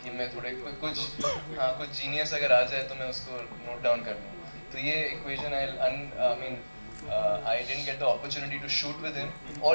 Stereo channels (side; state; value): both; inverted; correlation -1.00